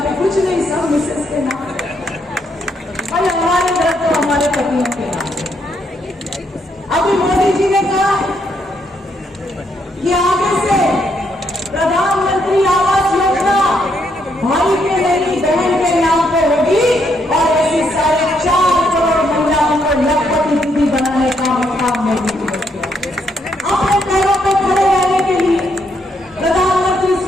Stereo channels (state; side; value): normal; both; correlation 0.75